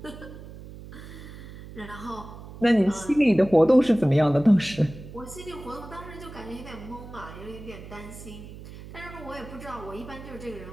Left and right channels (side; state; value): right; noise; hum, 14 dB below the sound